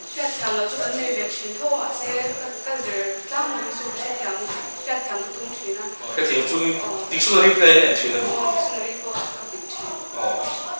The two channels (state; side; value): inverted; both; correlation -1.00